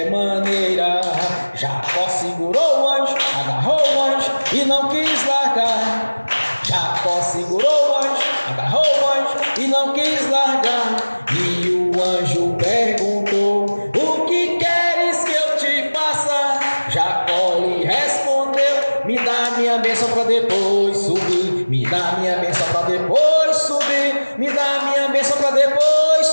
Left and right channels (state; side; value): inverted; both; correlation -1.00